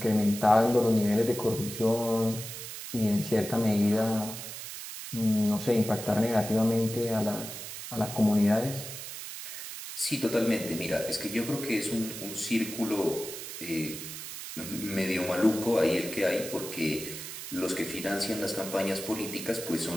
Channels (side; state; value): right; noise; hiss, 9 dB below the sound